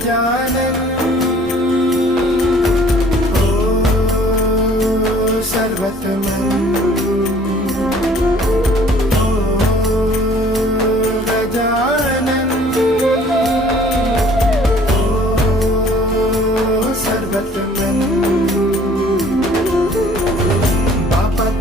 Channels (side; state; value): both; normal; correlation 0.54